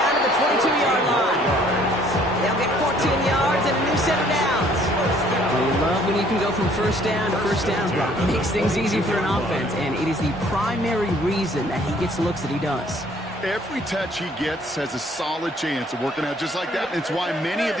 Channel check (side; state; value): both; normal; correlation 0.60